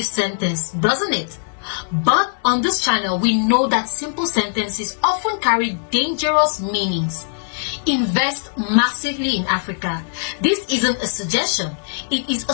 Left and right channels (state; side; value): silent; right; digital silence